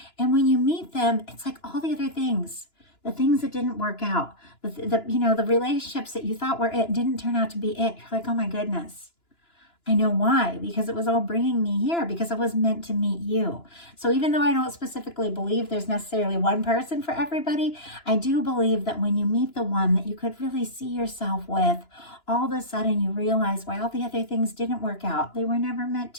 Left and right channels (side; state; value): right; late; 2.9 ms